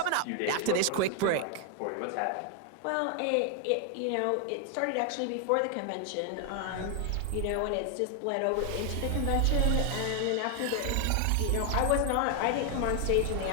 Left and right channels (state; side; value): different; both; correlation 0.00